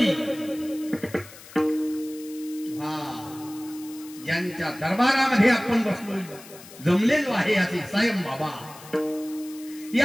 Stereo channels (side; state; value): left; noise; hiss, 18 dB below the sound